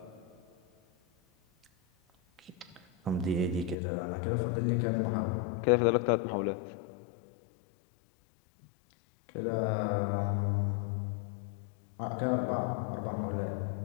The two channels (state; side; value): drops out; right; at 3.8 s